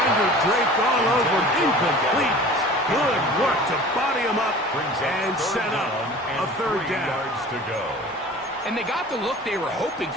draped all over, incomplete. Good work to body him up and set up a 3rd down. Yards to go. And they got the look they were hoping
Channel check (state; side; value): normal; both; correlation 0.42